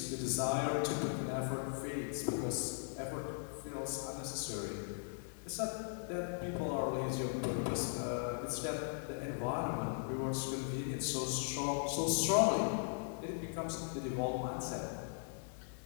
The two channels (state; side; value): silent; right; digital silence